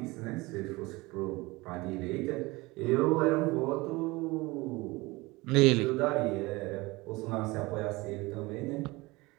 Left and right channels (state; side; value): quieter; left; 22.5 dB